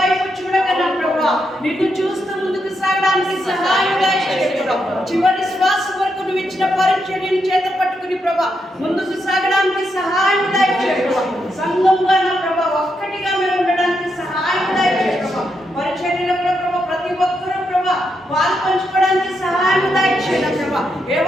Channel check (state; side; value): normal; both; correlation 0.82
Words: చూడక నా ప్రభా, నిన్ను చూస్తూ ముందుకు సాగడానికి సహాయం దయచేయడం. చివరి శ్వాస వరకు నువ్వు ఇచ్చిన పరిచర్యను చేత పట్టుకుని ప్రభా ముందుకు సాగడానికి సహాయం దయచేయడం. సంఘంగా నా ప్రభా ఒక్కటిగా మేము ఉండడానికి సహాయం దయచేయడం. పరిచర్యలో కూడా ప్రభా ప్రతి ఒక్కరూ ప్రభా వాళ్ళు పంచుకోవడానికి సహాయం దయచేయడం ప్రభా. ఏ